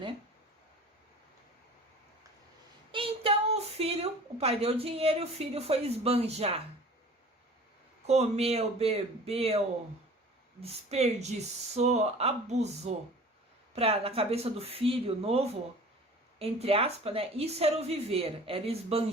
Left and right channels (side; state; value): both; normal; correlation 0.44